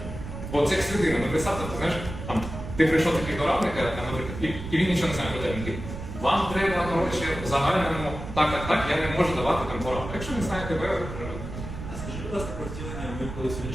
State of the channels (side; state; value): right; noise; rumble, 9 dB below the sound